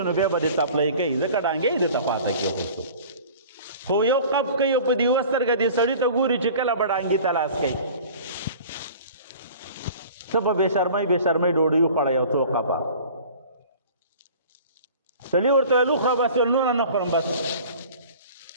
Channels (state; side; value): inverted; both; correlation -0.44